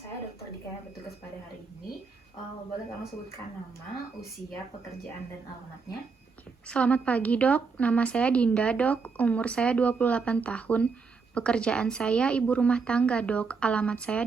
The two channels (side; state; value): left; quieter; 4.9 dB